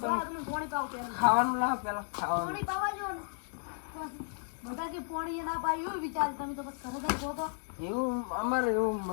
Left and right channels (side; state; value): right; silent; 55 dB below the other